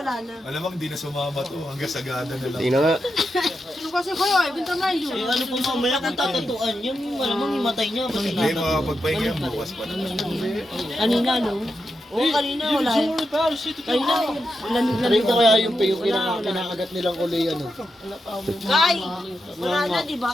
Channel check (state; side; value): normal; both; correlation 0.87